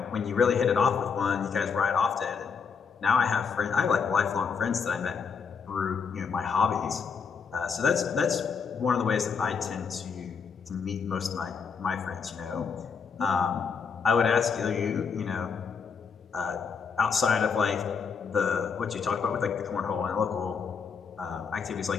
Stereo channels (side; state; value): right; quieter; 6.0 dB